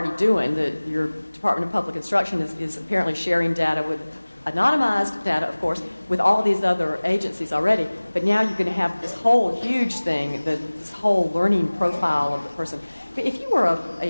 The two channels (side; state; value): both; inverted; correlation -1.00